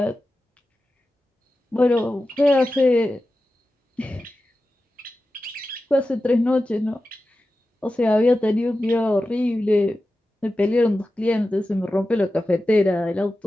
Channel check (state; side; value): normal; both; correlation 0.93